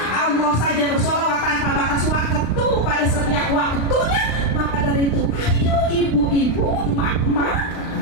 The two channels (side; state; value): right; late; 36 ms